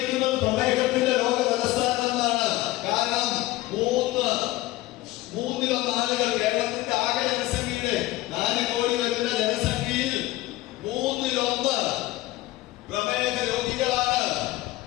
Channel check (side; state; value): right; quieter; 17.9 dB